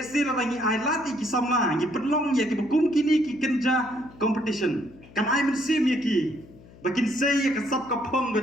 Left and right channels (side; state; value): left; noise; hum, 22 dB below the sound